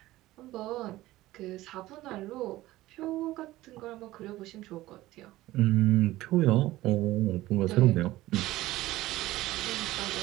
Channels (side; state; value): left; quieter; 16.9 dB